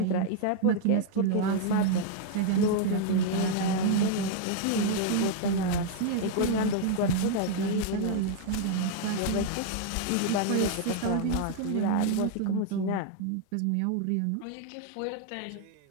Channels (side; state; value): both; different; correlation 0.00